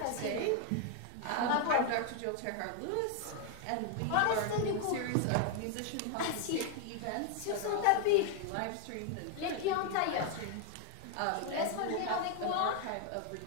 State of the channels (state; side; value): different; both; correlation 0.00